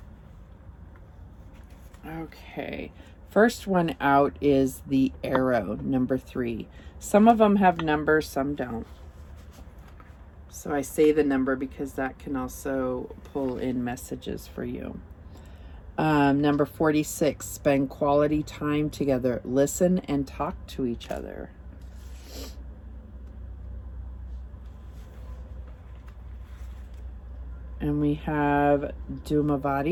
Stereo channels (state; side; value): identical; both; correlation 1.00